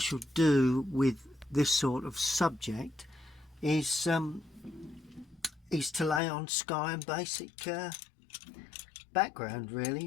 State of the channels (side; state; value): right; drops out; at 6.2 s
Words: do with this sort of subject is to lay on sky and basic background,